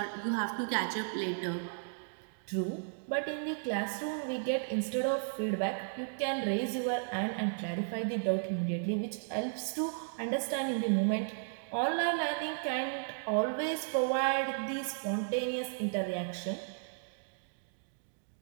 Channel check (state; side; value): silent; left; digital silence